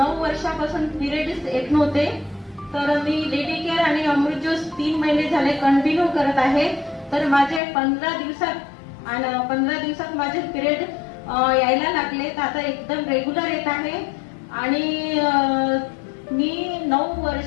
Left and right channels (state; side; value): drops out; right; at 7.6 s